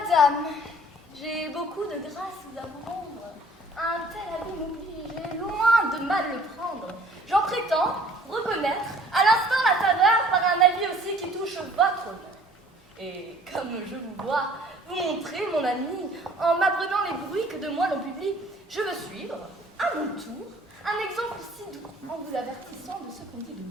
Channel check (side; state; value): both; normal; correlation 0.53